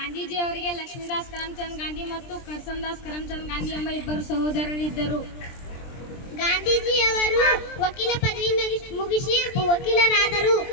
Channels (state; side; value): late; right; 23 ms